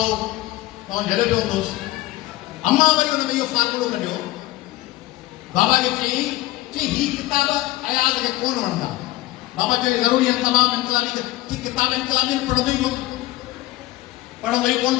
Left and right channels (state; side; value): quieter; right; 17.7 dB